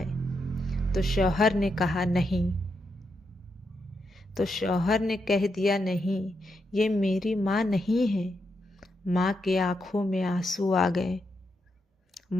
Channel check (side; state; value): both; normal; correlation 0.83